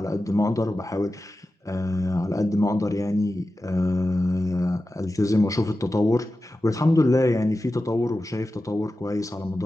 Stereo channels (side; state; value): both; normal; correlation 0.93